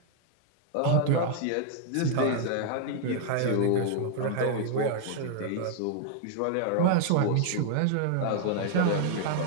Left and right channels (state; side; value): different; both; correlation 0.00